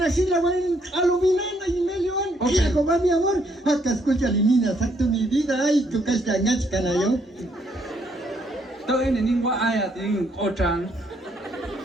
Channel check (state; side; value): normal; both; correlation 0.71